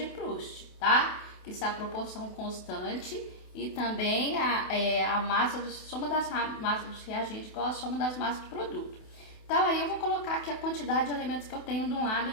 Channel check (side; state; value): right; late; 28 ms